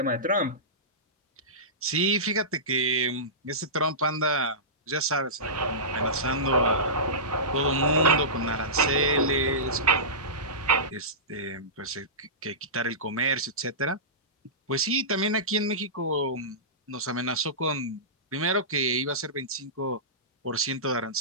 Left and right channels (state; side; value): normal; both; correlation -0.20